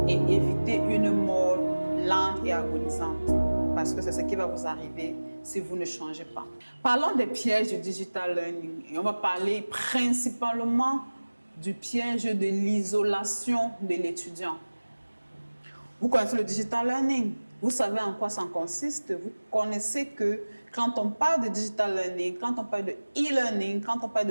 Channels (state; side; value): inverted; both; correlation -1.00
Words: et éviter une mort lente et agonisante. Parce que c'est ce qui va vous arriver si vous ne changez pas. Parlons des pièges du digital learning et on va parler principalement du piège de l'isolation de l'étudiant. Vous connaissez le digital learning, vous savez en quoi ça consiste, vous connaissez que quand on parle de digital learning, quand on parle de e-learning, quand on parle